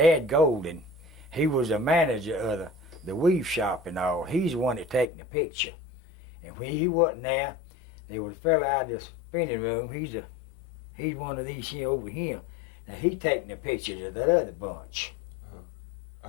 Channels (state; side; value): drops out; right; at 5.1 s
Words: Golden, he was a manager of the weave shop and all. He's the one that taking the picture. And when he wasn't there was a fella out of the spinning room. He's one of these here over here. Now he taking the pictures of that other bunch.